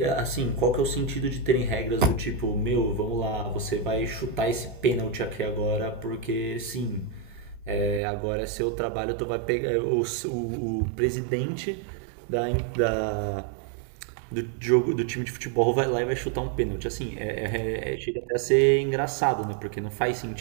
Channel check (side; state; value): left; drops out; at 8.0 s